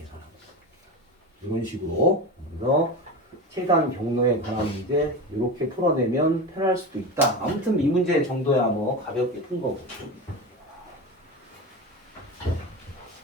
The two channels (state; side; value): normal; both; correlation 0.24